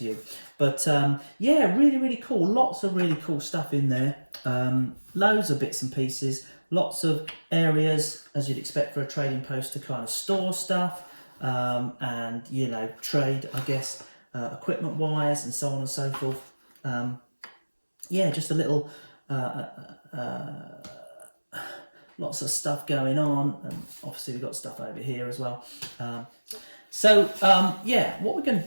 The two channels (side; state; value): both; inverted; correlation -1.00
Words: you. But yeah, really, really cool. Lots of really cool stuff in there. Loads of bits and pieces. Lots of areas, as you'd expect for a trading post, to kind of store stuff and, you know, trade, I guess, equipment wise and so on and so forth. Yeah, just a little... lots of stuff going on, and obviously we've got stuff over here as well. Yeah, what we're going to